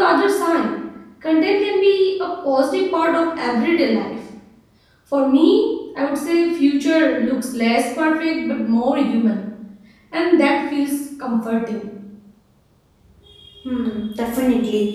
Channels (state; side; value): identical; both; correlation 1.00